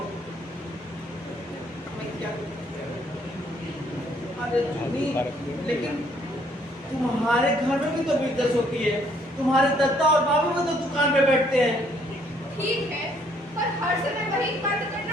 अरे जुनी, लेकिन तुम्हारे घर में भी तो बिजनेस होती है। तुम्हारे दत्ता और बाबू भी तो दुकान पे बैठते हैं। ठीक है, पर हर समय वही बात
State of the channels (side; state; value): both; normal; correlation 0.65